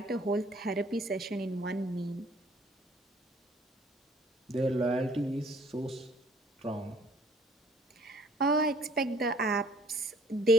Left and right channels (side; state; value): both; normal; correlation 0.57